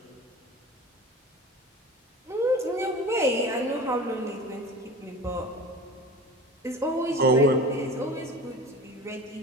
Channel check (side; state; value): both; normal; correlation 0.36